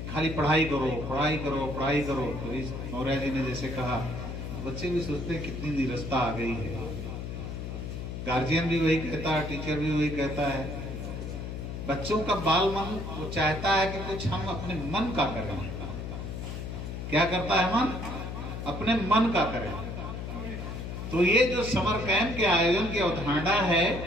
खाली पढ़ाई करो पढ़ाई करो पढ़ाई करो, तो इस मौर्य जी ने जैसे कहा, बच्चे भी सोचते हैं कितनी निरस्ता आ गई है। गार्जियन भी वही कहता है, टीचर भी वही कहता है। बच्चों का बाल मन वो चाहता है कि कुछ हम अपने मन का करें। क्या करता है मन? अपने मन का करें। तो ये जो समर कैंप के आयोजन की अवधारणा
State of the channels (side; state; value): left; noise; hum, 6 dB below the sound